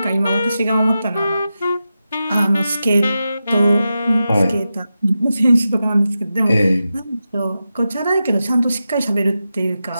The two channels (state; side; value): inverted; both; correlation -0.91